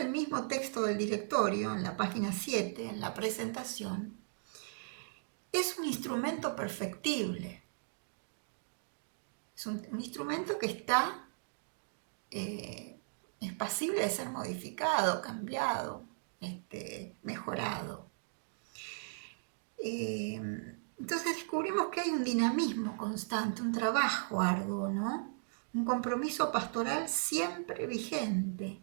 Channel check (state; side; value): silent; left; digital silence